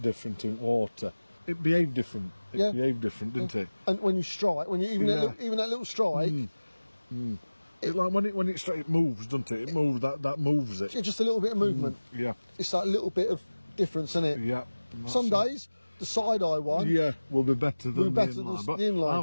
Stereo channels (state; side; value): inverted; both; correlation -1.00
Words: in water. It behaved different. It behaved different, didn't it? And when you strike, even that little strike, It's like when it moves, doesn't it? It moves. That moves it. it's just a little bit of movement. Yeah. It's that little bit of difference in it. Yeah. Some days the side eye one. Yeah, will be better than better the than inline. But the inline.